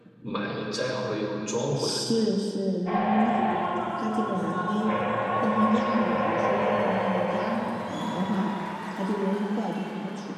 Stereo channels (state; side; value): identical; both; correlation 1.00